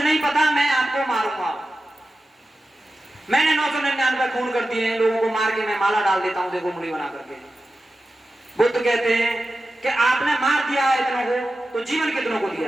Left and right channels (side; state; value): both; normal; correlation 0.93